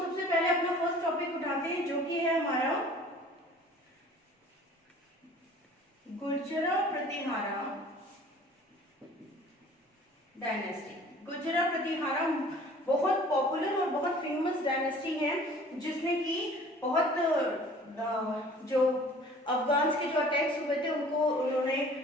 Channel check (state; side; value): normal; both; correlation 0.49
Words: सबसे पहले अपना फर्स्ट टॉपिक उठाते हैं, जो कि है हमारा गुर्जरा प्रतिहारा डायनेस्टी। गुर्जरा प्रतिहारा बहुत पॉपुलर और बहुत फेमस डायनेस्टी है, जिसने की बहुत जो अफगान्स के जो अटैक्स हुए थे उनको उन्होंने